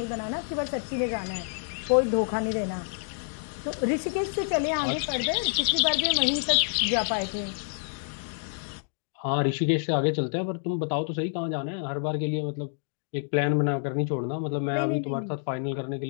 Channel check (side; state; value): right; silent; digital silence